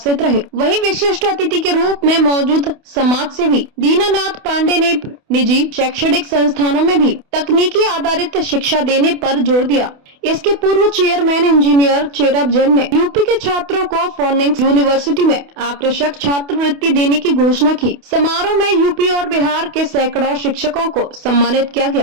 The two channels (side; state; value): left; late; 28 ms